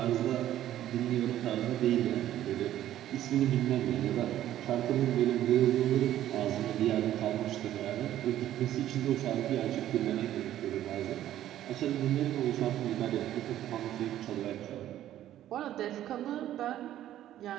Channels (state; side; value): quieter; left; 12.5 dB